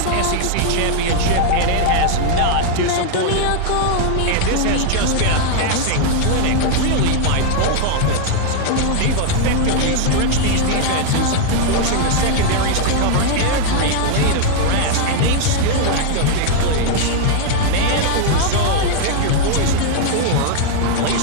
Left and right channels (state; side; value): different; both; correlation 0.00